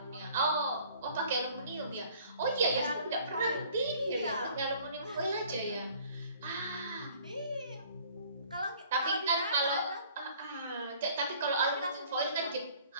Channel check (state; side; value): inverted; both; correlation -0.54